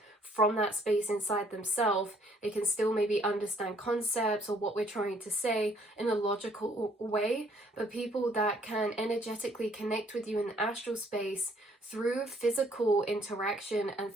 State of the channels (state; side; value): normal; both; correlation 0.63